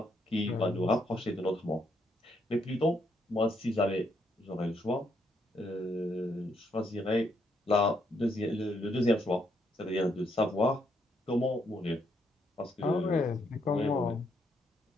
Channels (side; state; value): both; normal; correlation 0.75